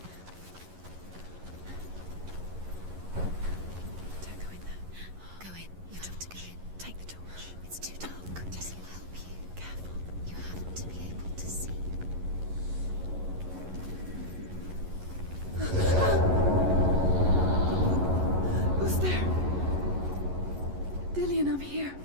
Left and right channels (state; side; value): late; left; 11 ms